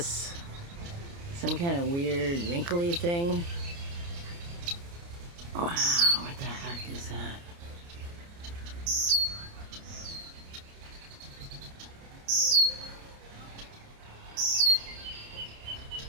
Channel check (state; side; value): late; left; 29 ms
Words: Some kind of weird wrinkly thing. Wow, what the heck is that?